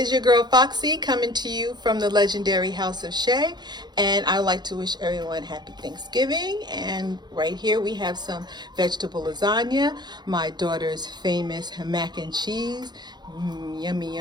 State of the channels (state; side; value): late; left; 0.21 ms